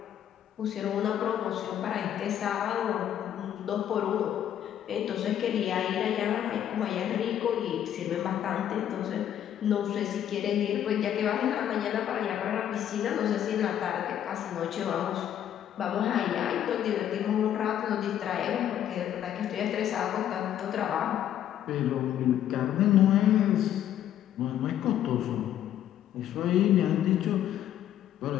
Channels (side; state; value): right; quieter; 10.7 dB